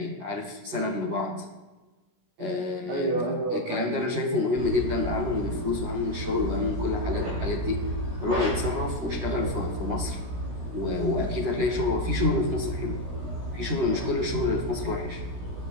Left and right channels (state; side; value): late; left; 17 ms